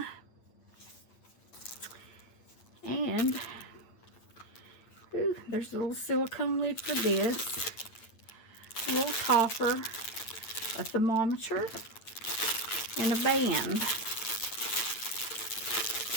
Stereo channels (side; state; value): right; late; 8.9 ms